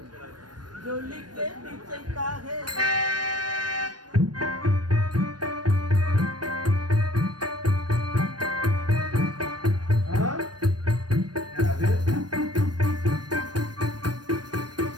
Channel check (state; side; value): late; left; 0.69 ms